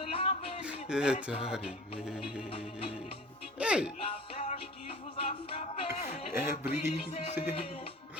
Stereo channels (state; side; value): normal; both; correlation 0.42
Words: Est arrivée. Hey! Est brisée.